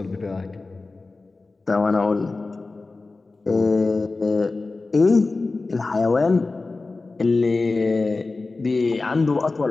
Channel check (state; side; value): quieter; right; 3.6 dB